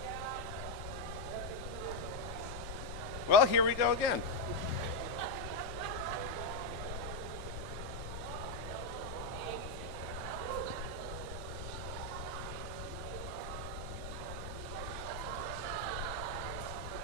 Well, here we go again.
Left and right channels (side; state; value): left; noise; rumble, 7 dB below the sound